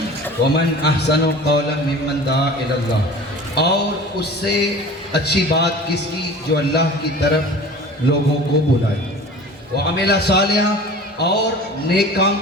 ومن احسن قولا ممن دعا الی اللہ، اور اس سے اچھی بات کس کی جو اللہ کی طرف لوگوں کو بلائے، وعمل صالحا، اور نیک کام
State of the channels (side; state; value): both; normal; correlation 0.40